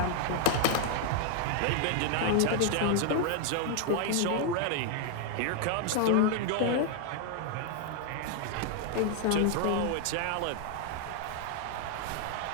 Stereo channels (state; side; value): different; both; correlation 0.00